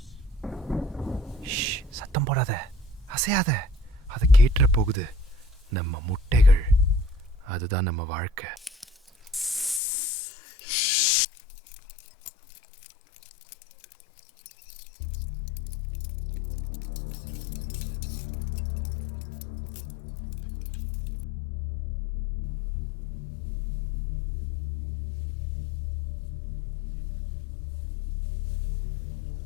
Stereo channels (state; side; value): drops out; right; at 9.8 s